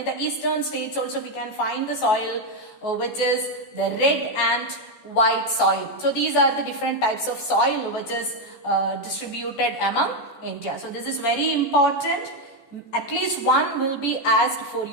the eastern states also we can find the soil which is the red and white soil. So these are the different types of soil which is distributed among India. So this is very important. At least one will be asked for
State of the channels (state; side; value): late; right; 14 ms